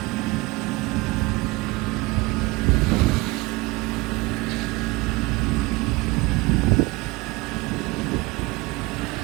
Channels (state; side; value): quieter; left; 23.0 dB